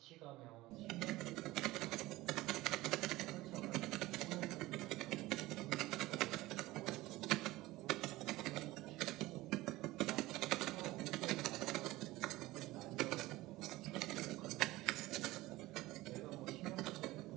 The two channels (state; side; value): quieter; left; 18.5 dB